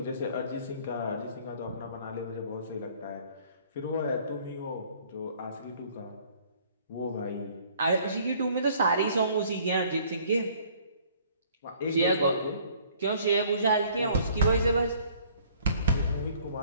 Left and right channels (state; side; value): inverted; both; correlation -0.57